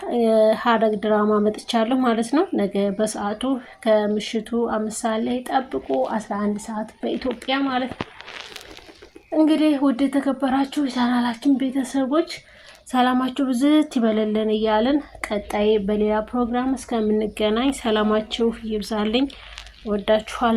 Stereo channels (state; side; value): identical; both; correlation 1.00